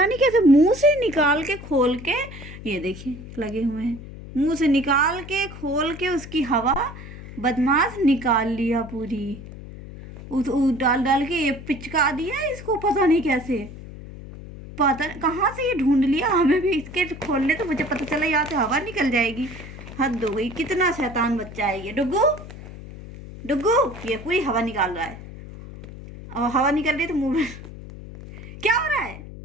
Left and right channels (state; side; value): noise; left; hum, 14 dB below the sound